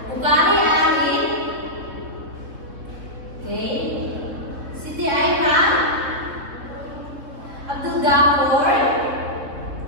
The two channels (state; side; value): late; left; 3.4 ms